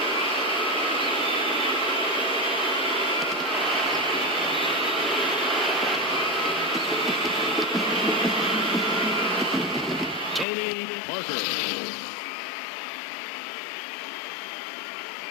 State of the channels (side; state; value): right; drops out; at 10.5 s